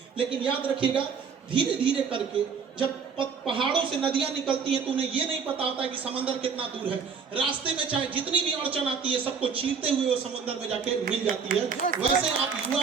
लेकिन याद रखिएगा धीरे धीरे करके जब पहाड़ों से नदियां निकलती हैं तो उन्हें ये नहीं पता होता है कि समंदर कितना दूर है। रास्ते में चाहे जितनी भी अड़चन आती है सबको चीरते हुए वो समंदर में जाके मिल जाती है। वैसे आप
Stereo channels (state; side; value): quieter; left; 5.9 dB